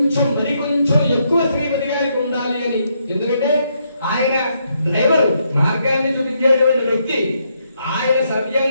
ఎక్కువ శ్రీపతి గారికి ఉండాలి అని. ఎందుకంటే ఆయన డ్రైవర్, మార్గాన్ని చూపించేటువంటి వ్యక్తి. ఆయన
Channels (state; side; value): inverted; both; correlation -0.76